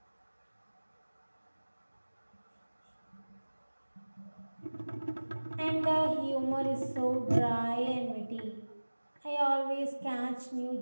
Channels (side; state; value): both; inverted; correlation -1.00